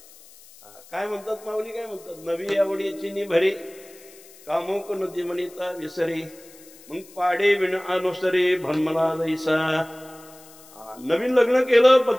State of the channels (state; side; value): noise; left; hiss, 23 dB below the sound